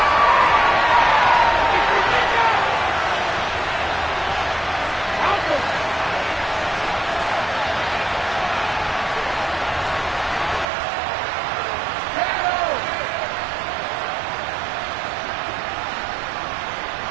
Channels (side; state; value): left; drops out; at 10.7 s